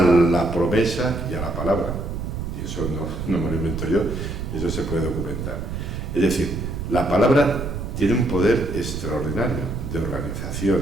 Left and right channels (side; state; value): right; noise; rumble, 5 dB below the sound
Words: promesa y a la palabra. Y eso no me lo invento yo, eso se puede documentar. Es decir, la palabra tiene un poder extraordinario de organización,